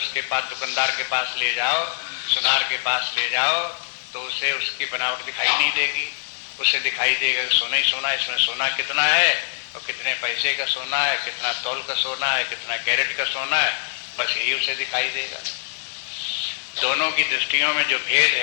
पास दुकानदार के पास ले जाओ, सुनार के पास ले जाओ, तो उसे उसकी बनावट दिखाई नहीं देगी। उसे दिखाई देगा सोना ही सोना, इसमें सोना कितना है और कितने पैसे का सोना है, कितना तौल का सोना है, कितना कैरेट का सोना है, बस यही उसे दिखाई देगा। दोनों की दृष्टियों में जो भेद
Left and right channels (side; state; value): right; silent; 59 dB below the other